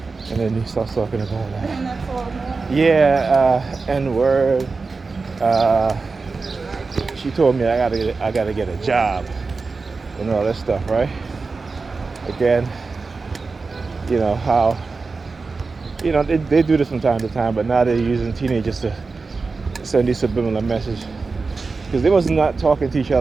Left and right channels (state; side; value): quieter; left; 4.2 dB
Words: And then he starts talking about N-word. She told me I gotta get a job and all that stuff, right? Again, how they do this from time to time, but now they're using teenagers to send these subliminal messages, because they was not talking to each